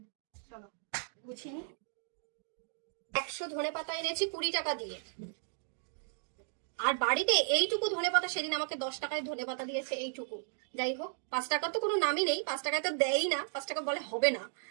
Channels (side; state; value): left; silent; digital silence